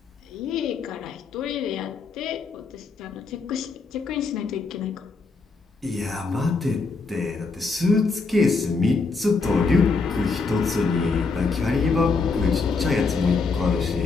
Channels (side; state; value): right; quieter; 4.3 dB